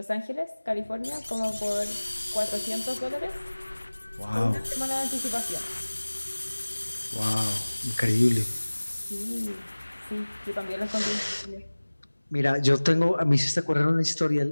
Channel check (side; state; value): both; inverted; correlation -1.00